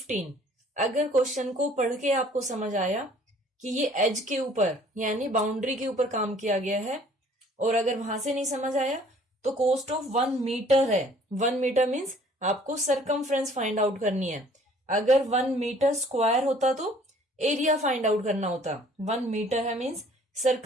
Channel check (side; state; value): both; normal; correlation 0.56